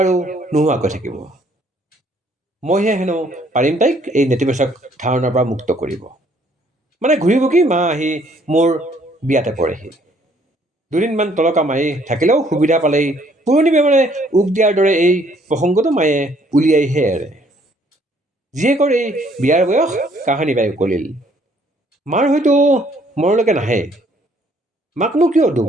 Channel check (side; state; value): both; normal; correlation 0.64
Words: নোহোৱাকৈ থাকিব। মইহে হেনো পাৰিম তাইক এই নেতিবাচক ধাৰণাৰ পৰা মুক্ত কৰিব। মানে ঘূৰি পকি মা আহি মোৰ বিয়াতে পৰেহি। দুদিনমান তলকা মাৰি থাকিলেও সুবিধা পালেই পুৰণি বেমাৰে উক দিয়াৰ দৰে এই প্ৰসংগটো মায়ে উলিয়াইহে এৰে। জীয়েকৰ এই বিয়াৰ বয়স কাহানি বাই উকলিল। মাৰ হয়তো মনলৈকে নাহে। মাকনো কিয় দুখ